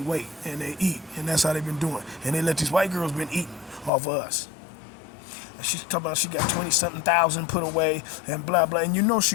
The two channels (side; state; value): right; drops out; at 3.9 s